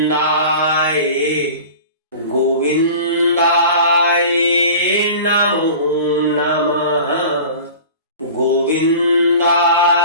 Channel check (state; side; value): inverted; both; correlation -0.39